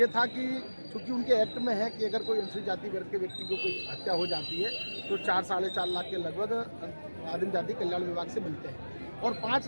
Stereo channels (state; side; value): inverted; both; correlation -1.00